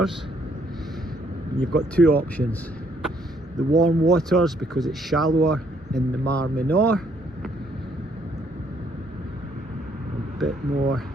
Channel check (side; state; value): both; normal; correlation 0.68